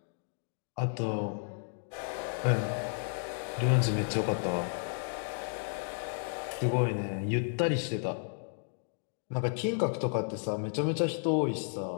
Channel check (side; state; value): right; silent; digital silence